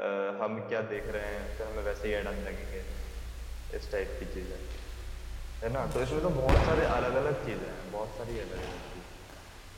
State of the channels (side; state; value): both; identical; correlation 1.00